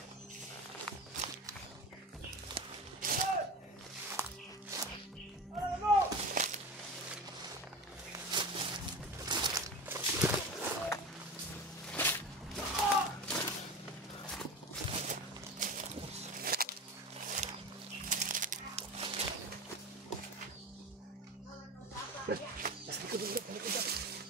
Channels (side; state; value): both; normal; correlation 0.28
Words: Brad. Sa likod dito, sa likod dito.